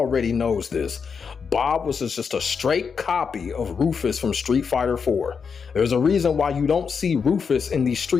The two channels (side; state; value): right; quieter; 6.0 dB